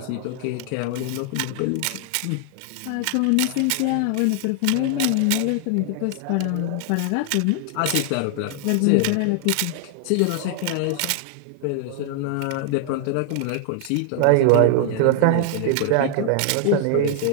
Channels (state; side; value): different; both; correlation 0.00